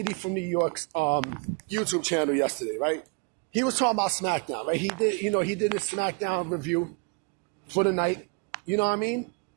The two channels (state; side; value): quieter; left; 33.0 dB